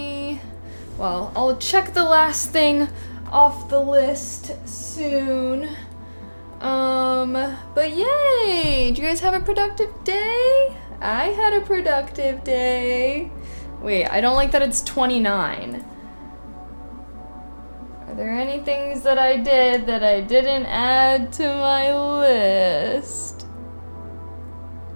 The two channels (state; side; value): inverted; both; correlation -1.00